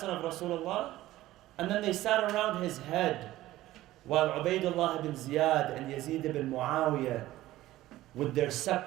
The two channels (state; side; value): quieter; left; 15.8 dB